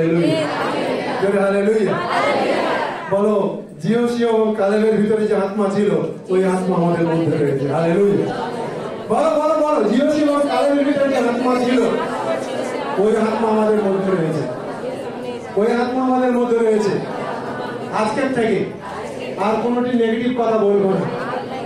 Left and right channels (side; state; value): both; identical; correlation 1.00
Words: জোরে হালেলুয়া। বলো, জিওসি এবং কালেবের ভিতরে যে আত্মা ছিল, ওই আত্মা আমাদের মধ্যে রয়েছে। হালেলুয়া। বলো বলো বলো, জিওসি এবং কালেবের ভিতরে যে আত্মা ছিল, ওই আত্মা আমাদের মধ্যে রয়েছে। ওই আত্মা আমাদের মধ্যে রয়েছে। আজকের থেকে আর কোনোটি নেগেটিভ কথা বলবো না,